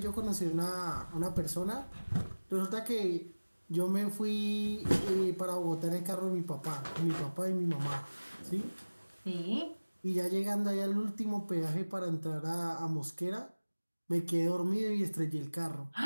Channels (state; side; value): inverted; both; correlation -1.00